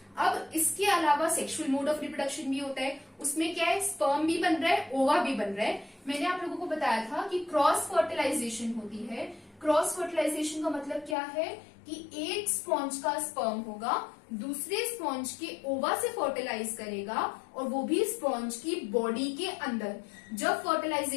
अब इसके अलावा सेक्सुअल मोड ऑफ रिप्रोडक्शन भी होता है। उसमें क्या है, स्पर्म भी बन रहा है, ओवा भी बन रहा है। मैंने आप लोगों को बताया था कि क्रॉस फर्टिलाइजेशन होती है। क्रॉस फर्टिलाइजेशन का मतलब क्या है कि एक स्पॉन्ज का स्पर्म होगा, दूसरे स्पॉन्ज के ओवा से फर्टिलाइज करेगा, और वो भी स्पॉन्ज की बॉडी के अंदर। जब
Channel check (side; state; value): right; drops out; at 11.2 s